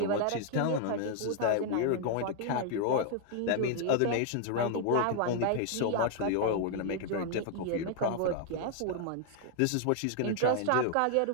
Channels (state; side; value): different; both; correlation 0.00